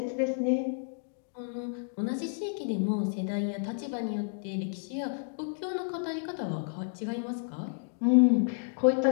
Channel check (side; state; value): right; silent; digital silence